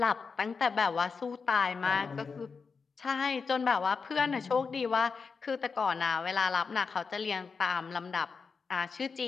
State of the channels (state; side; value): quieter; right; 5.1 dB